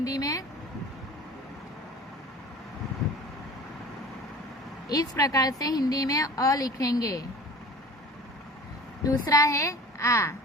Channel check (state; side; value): normal; both; correlation 0.41